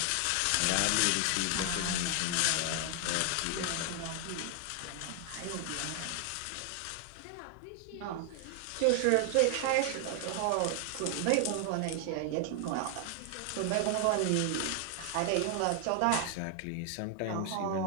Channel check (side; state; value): both; different; correlation 0.00